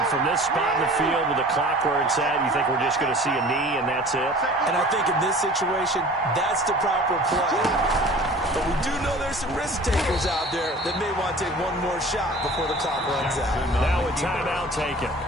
from this spot in the field with the clock where it's at, you think we're just going to see a knee and that's it? And I think in this situation, that's the proper play. But we do know there's some risk takers out there that may want to take one more shot before the clock runs out. Now a timeout taken.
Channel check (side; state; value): both; normal; correlation 0.44